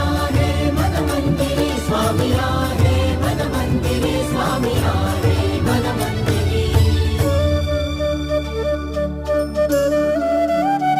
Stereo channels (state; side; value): identical; both; correlation 1.00